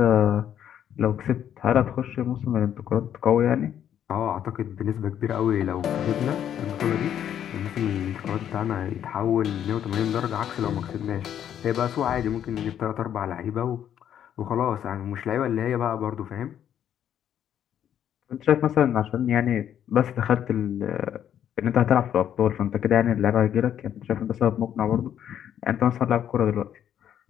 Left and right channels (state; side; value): quieter; right; 9.9 dB